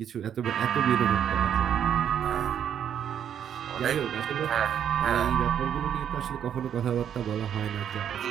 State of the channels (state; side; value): quieter; left; 9.1 dB